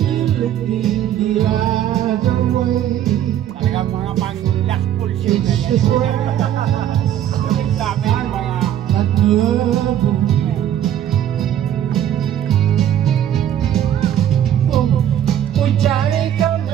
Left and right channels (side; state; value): left; quieter; 10.8 dB